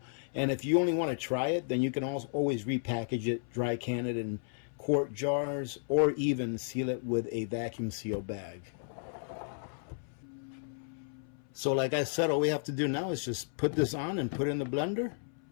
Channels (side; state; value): right; silent; 56 dB below the other